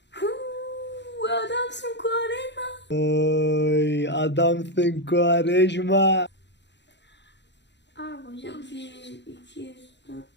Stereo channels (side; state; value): right; late; 0.51 ms